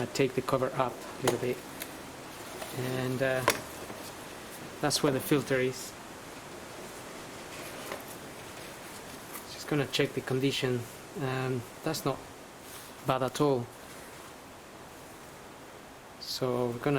take the cover up a little bit, and that's where the filter is. Just gonna check the condition. That's not bad at all, so we're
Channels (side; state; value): both; identical; correlation 1.00